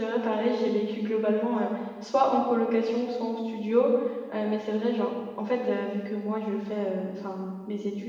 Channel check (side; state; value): both; identical; correlation 1.00